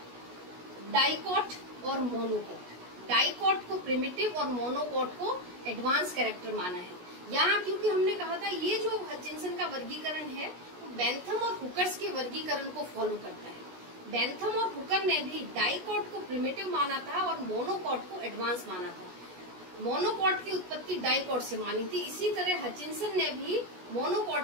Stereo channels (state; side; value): late; left; 16 ms